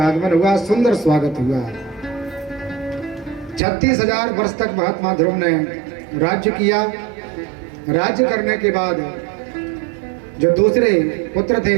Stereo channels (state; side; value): drops out; left; at 3.6 s